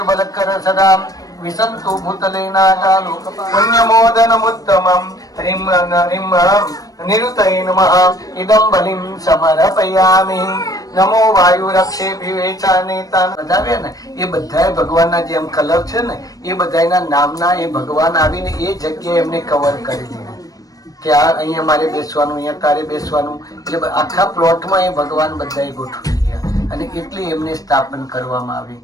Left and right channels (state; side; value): late; right; 0.18 ms